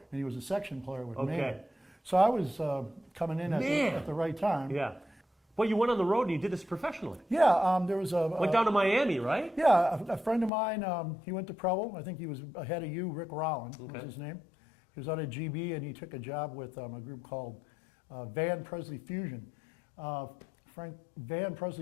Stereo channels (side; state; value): right; drops out; at 10.5 s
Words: And he was a section player with Maynard. So I was coming in at the right time. Yeah. Well, you went on the road and you did this professionally. Yeah, there was went down to Miami, right? Yeah, a friend of mine, he went to Provo. I think he was ahead of you, Rick Rowland was his name. He was out at GB, and he took a job with a group called Van Presley Fusion. Van